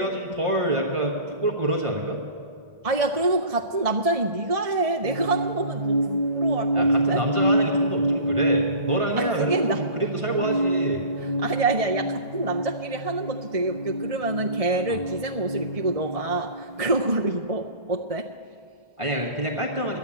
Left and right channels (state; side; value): late; left; 1.7 ms